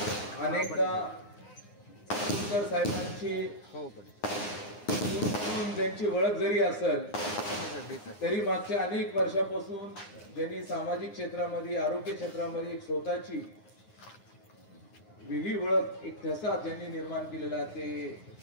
अनेकदा सुधाकर साहेबांची त्यांची ओळख जरी असेल तरी मागच्या अनेक वर्षापासून ज्यांनी सामाजिक क्षेत्रामध्ये आरोग्य क्षेत्रामध्ये एक स्वतःची वेगळी ओळख एक ठसा ज्यांनी निर्माण केलेला ते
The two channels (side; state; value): right; late; 9.7 ms